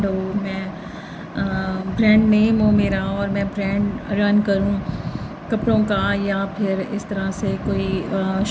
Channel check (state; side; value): identical; both; correlation 1.00